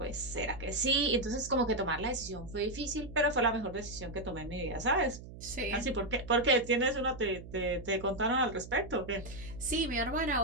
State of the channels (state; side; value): noise; right; hum, 14 dB below the sound